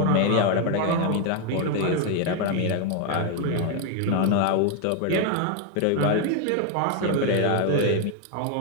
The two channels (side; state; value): both; different; correlation 0.01